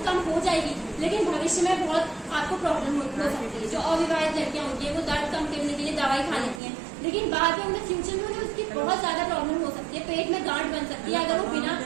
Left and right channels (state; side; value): drops out; left; at 6.6 s